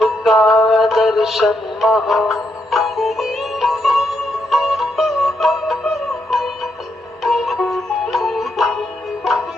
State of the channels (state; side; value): normal; both; correlation 0.80